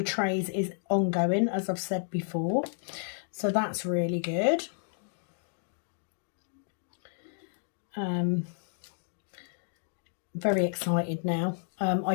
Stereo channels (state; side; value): silent; right; digital silence